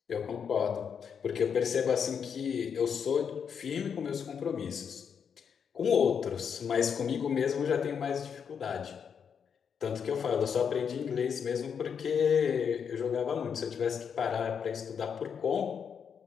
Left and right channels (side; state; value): right; quieter; 7.1 dB